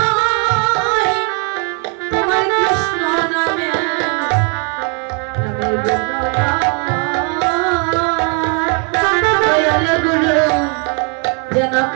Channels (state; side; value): quieter; left; 37.4 dB